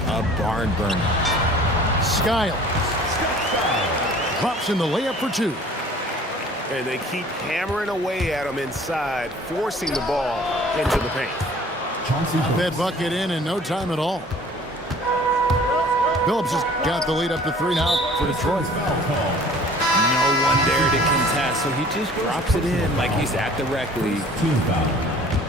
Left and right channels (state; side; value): normal; both; correlation 0.50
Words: barn burner. Skiles drops in the layup for 2. And they keep hammering away at him inside, forcing the ball into the paint. That bucket in no time at all. Phillips has got the lead up to 3 now for Detroit. No one there to contest, so he just drops it in like he's at the rec league. Team foul.